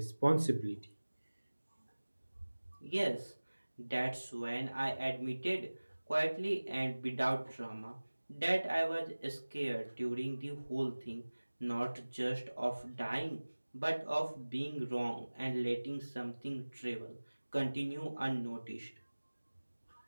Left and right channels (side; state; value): both; inverted; correlation -1.00